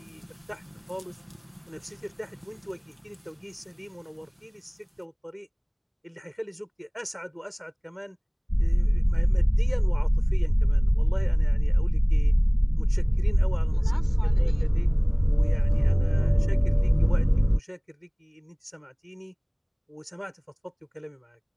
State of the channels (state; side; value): identical; both; correlation 1.00